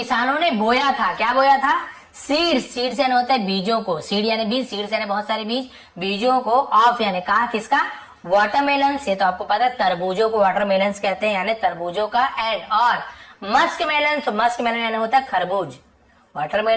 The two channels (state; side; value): identical; both; correlation 1.00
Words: ने बोया था, क्या बोया था? सीड्स, सीड्स यानी होता है बीजों को, सीड यानी बीज, सीड्स यानी बहुत सारे बीज, बीजों को। ऑफ यानी का, किसका? वाटरमेलन से, तो आपको पता है तरबूजों को वाटरमेलन कहते हैं, यानी तरबूजों का। एंड और मस्कमेलन, तो मस्कमेलन यानी होता है खरबूज।